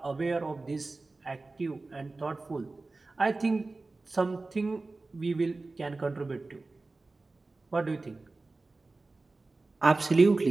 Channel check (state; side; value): quieter; left; 3.4 dB